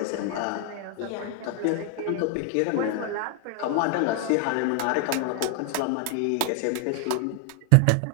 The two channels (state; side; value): different; both; correlation 0.00